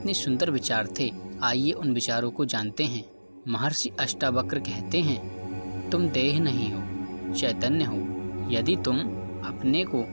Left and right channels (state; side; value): inverted; both; correlation -1.00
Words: सुंदर विचार थे, आइए उन विचारों को जानते हैं। महर्षि अष्टावक्र कहते हैं, तुम देह नहीं हो, चैतन्य हो। यदि तुम अपने को